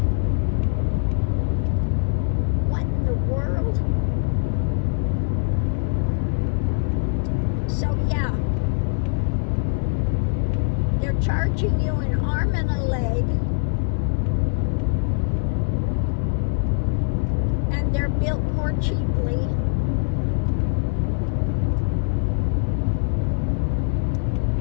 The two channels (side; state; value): right; silent; digital silence